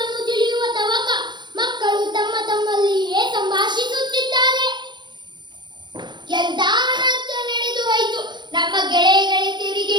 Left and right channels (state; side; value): late; left; 0.22 ms